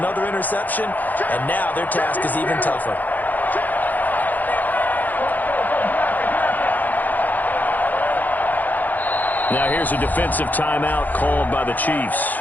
interception, and now their task is even tougher. Now here's a defensive timeout called by the Chiefs.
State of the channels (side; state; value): right; late; 0.083 ms